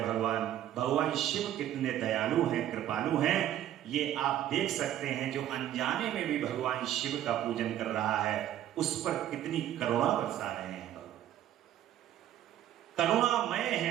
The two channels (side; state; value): left; quieter; 11.9 dB